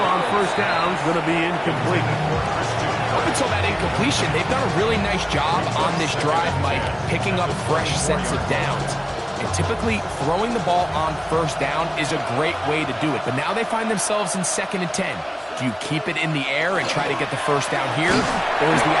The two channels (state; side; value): identical; both; correlation 1.00